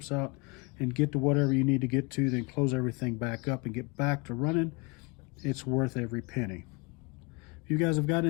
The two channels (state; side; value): quieter; right; 28.9 dB